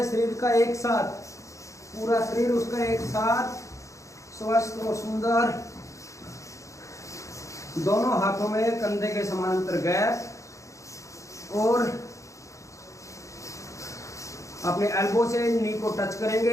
शरीर का एक साथ, पूरा शरीर उसका एक साथ स्वस्थ और सुंदर। दोनों हाथों में कंधे के समानांतर गैप और अपने एल्बो से नी को टच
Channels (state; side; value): late; right; 0.15 ms